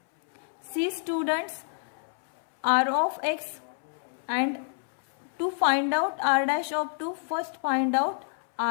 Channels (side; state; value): right; silent; 59 dB below the other